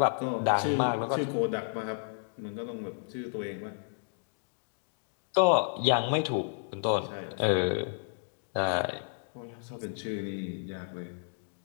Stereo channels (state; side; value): silent; right; digital silence